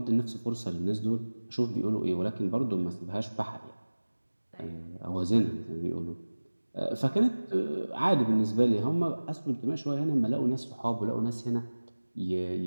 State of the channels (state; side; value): inverted; both; correlation -1.00